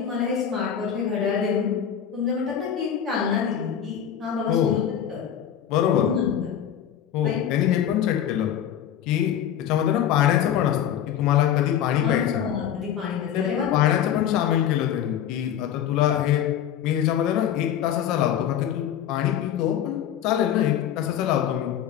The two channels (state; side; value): quieter; right; 9.6 dB